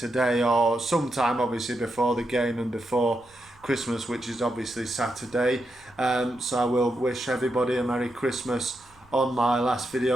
or sometime obviously before the game and before Christmas, which is obviously Saturday. So I will wish everybody a Merry Christmas on my last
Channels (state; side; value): noise; right; rumble, 29 dB below the sound